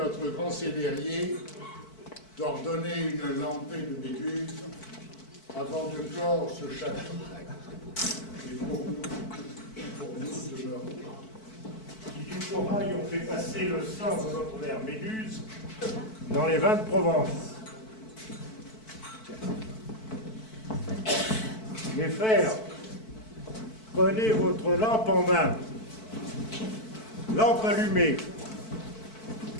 grand célérier d'ordonner une lampée de Méduse avant de clore ce chapitre. Et pour nous demeure. Qui du corail ont fait passer le sang de notre mère Méduse dans les vins de Provence. Mes frères, prenez votre lampe en main, lampe allumée,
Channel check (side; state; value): right; late; 4.6 ms